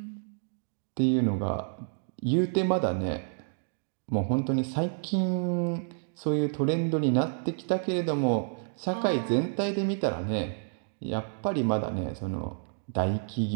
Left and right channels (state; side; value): silent; left; digital silence